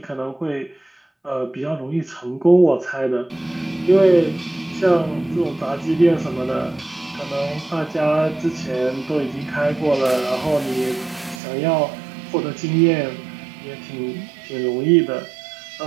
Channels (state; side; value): drops out; left; at 11.4 s